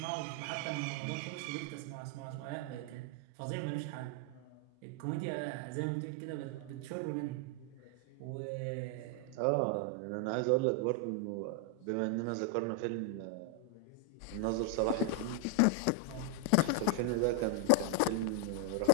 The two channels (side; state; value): both; different; correlation 0.00